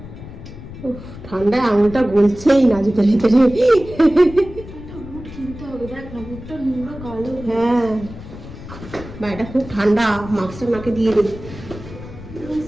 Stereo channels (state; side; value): noise; left; rumble, 14 dB below the sound